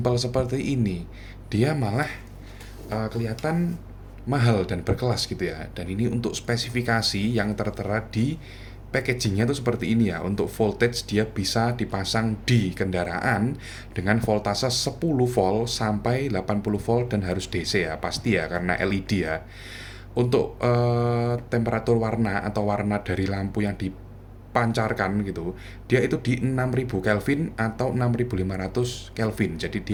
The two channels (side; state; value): both; identical; correlation 1.00